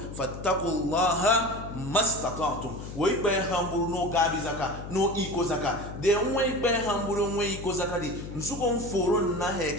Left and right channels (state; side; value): noise; left; hum, 10 dB below the sound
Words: fattaqullaha mastata'tum wo ibe hamburu no gabi zaka no iko zaka de wo ibe hamburu wo iko zaka di nsuko mforo na he